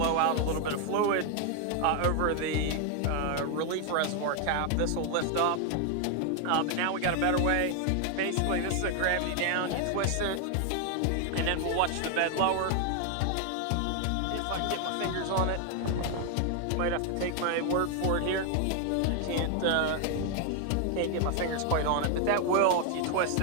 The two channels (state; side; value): different; both; correlation 0.01